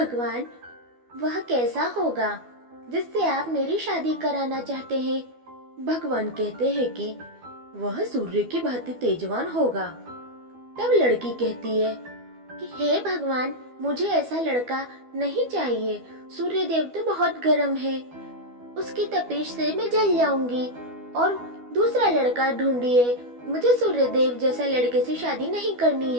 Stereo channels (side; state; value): left; late; 12 ms